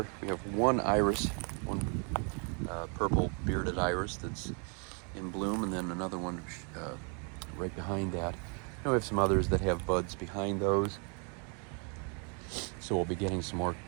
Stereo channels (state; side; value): quieter; left; 37.9 dB